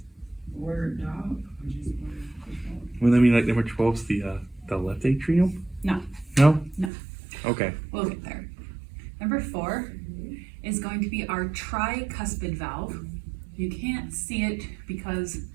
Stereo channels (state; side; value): drops out; left; at 6.9 s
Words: Word, dog. Well, I mean, like number 12 is the left atrium? No. No? No. Okay. We'll get there. Number 4 is going to be our tricuspid valve. You can't see it because